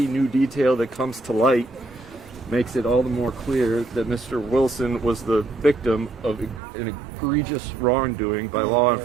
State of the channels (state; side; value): drops out; left; at 6.6 s